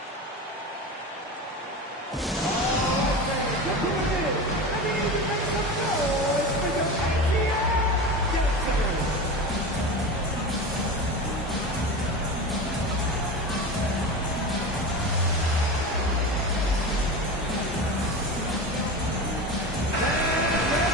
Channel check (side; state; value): both; normal; correlation 0.27